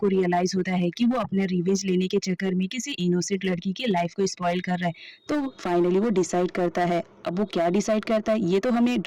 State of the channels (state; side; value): identical; both; correlation 1.00